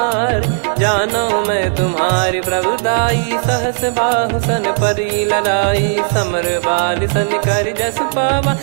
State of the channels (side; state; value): left; silent; digital silence